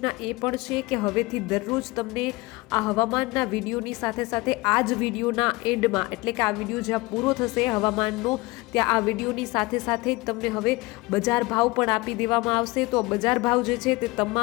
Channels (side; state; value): right; quieter; 22.6 dB